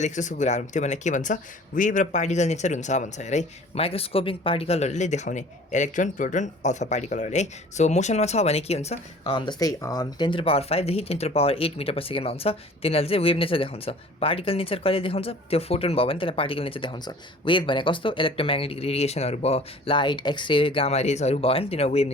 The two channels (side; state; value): both; normal; correlation 0.48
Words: कुराहरू त्यो भनेर के भन्छ वेभ र पार्टिकल नेचर हुन्छ भन्छ हेर है माइक्रोस्कोपिक पार्टिकलहरूले देखाउने इलेक्ट्रोन प्रोटोन अल्फा पार्टिकलहरूले है सो मोसनमा छ भने के हुन्छ जस्तै 10⁵ देखि 10⁸ मिटर पर सेकेन्डमा हुन्छ तिनीहरूले चाहिँ वेभ नेचर देखाउँछ पार्टिकल नेचर कहिले देखाउँछ त्यो फोटोन भयो भने त्यसलाई पार्टिकल नेचर देखाउँछ वेभ भनेको कस्तो इलेक्ट्रोम्याग्नेटिक रेडिएसनहरू भयो लाइट एक्सरे गामा रेजहरू भयो भने तिनीहरू वेभ